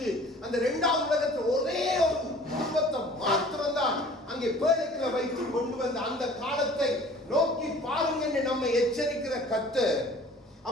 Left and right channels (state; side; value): normal; both; correlation 0.48